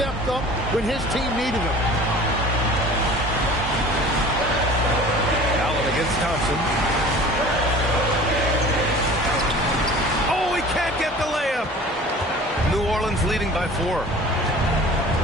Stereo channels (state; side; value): normal; both; correlation 0.43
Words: up when his team needed him. Allen against Thompson. Oh, he can't get the layup. New Orleans leading by 4.